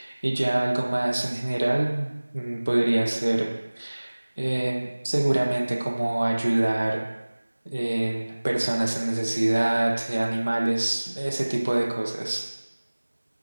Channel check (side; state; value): both; inverted; correlation -1.00